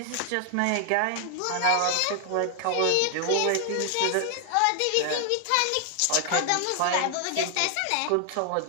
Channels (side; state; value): both; different; correlation 0.00